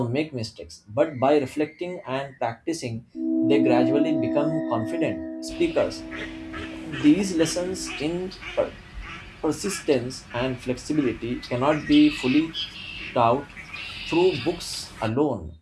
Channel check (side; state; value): both; identical; correlation 1.00